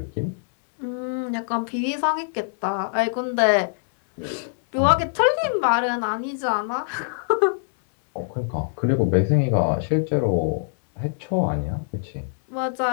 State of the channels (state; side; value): silent; right; 62 dB below the other